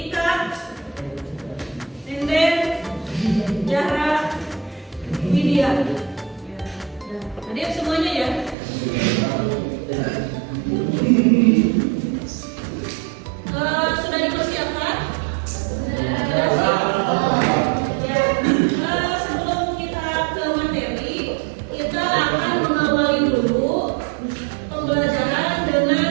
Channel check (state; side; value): drops out; left; at 8.6 s